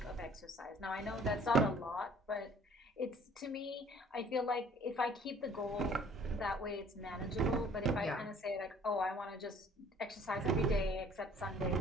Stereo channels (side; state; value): both; normal; correlation 0.54